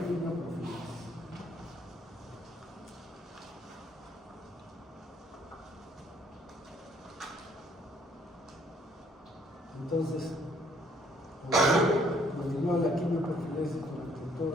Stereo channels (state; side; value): normal; both; correlation 0.64